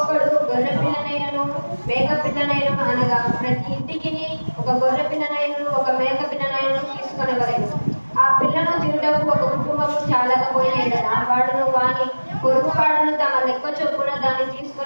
గొర్రె పిల్లనైనను మేక పిల్లనైనను అనగా ప్రతి ఇంటికి ఒక గొర్రె పిల్లనైనను ఒక మేక పిల్లనైనను తీసుకొనవలెను. ఆ పిల్లను తినుటకు ఒక కుటుంబము చాలకపోయిన ఎడల వాడును వాని పొరుగుపాడును తమ లెక్క చొప్పున దాన్ని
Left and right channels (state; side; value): inverted; both; correlation -1.00